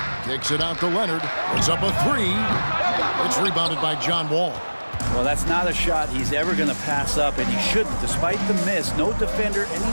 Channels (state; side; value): inverted; both; correlation -1.00